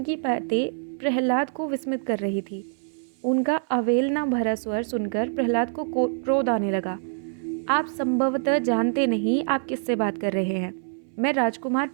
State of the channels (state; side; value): silent; left; 61 dB below the other